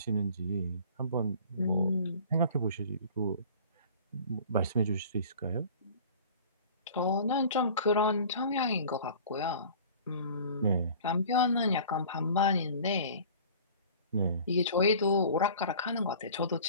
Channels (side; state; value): both; inverted; correlation -0.45